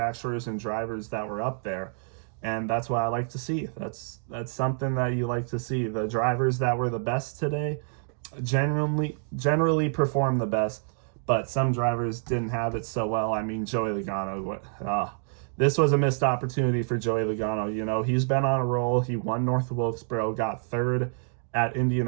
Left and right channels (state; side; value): silent; left; digital silence